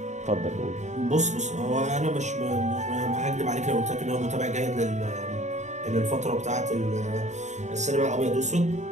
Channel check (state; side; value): late; left; 0.34 ms